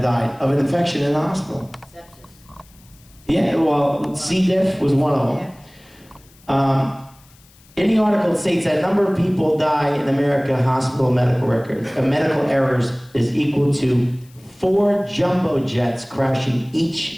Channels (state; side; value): noise; left; hiss, 28 dB below the sound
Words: of an infection in the hospital. Sepsis. Yeah, well, C. diff was one of them. Yeah. In the article, it states that number of people die in America hospital medical records, medical errors is equal to 4 jumbo jets crashing